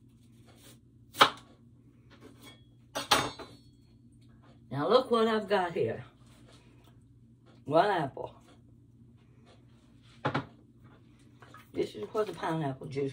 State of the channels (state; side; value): identical; both; correlation 1.00